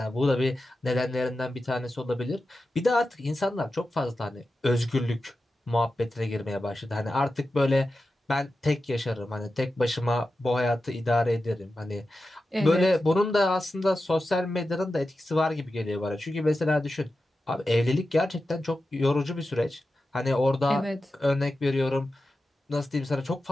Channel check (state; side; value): normal; both; correlation 0.92